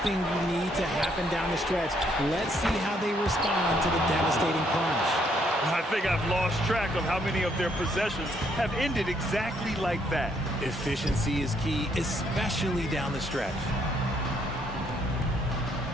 thing you need to happen down the stretch. Let's see how they respond to the devastating plunge. I think I've lost track of how many of their possessions have ended exactly like that. Efficiency is key, especially down the stretch.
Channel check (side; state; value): both; normal; correlation 0.70